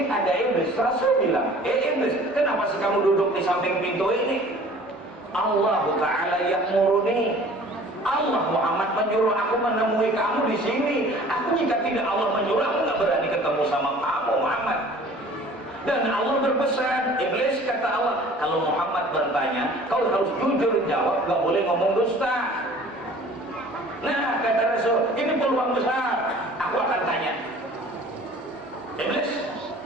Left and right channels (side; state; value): both; normal; correlation 0.48